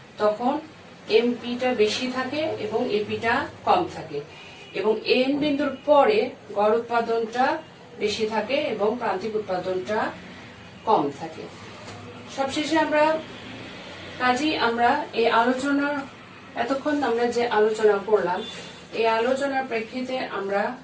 তখন MPটা বেশি থাকে এবং APটা কম থাকে এবং N বিন্দুর পরে গড় উৎপাদনটা বেশি থাকে এবং প্রান্তিক উৎপাদনটা কম থাকে। সবশেষে আমরা এই আলোচনার এতক্ষণ আমরা যে আলোচনা করলাম এই আলোচনার প্রেক্ষিতে আমরা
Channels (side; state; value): both; identical; correlation 1.00